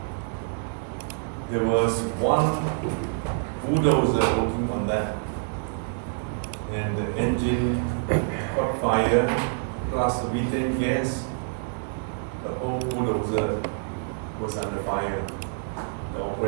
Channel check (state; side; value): silent; left; 60 dB below the other